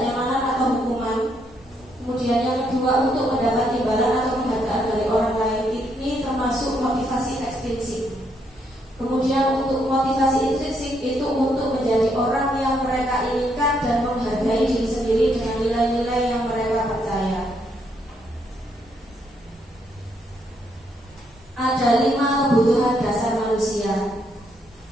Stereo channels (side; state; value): both; normal; correlation 0.75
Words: atau hukuman. Kemudian yang kedua untuk mendapat imbalan atau penghargaan dari orang lain. Ini termasuk motivasi ekstrinsik. Kemudian untuk motivasi intrinsik itu untuk menjadi orang yang mereka inginkan dan menghargai diri sendiri dengan nilai-nilai yang mereka percaya. Ada 5 kebutuhan dasar manusia.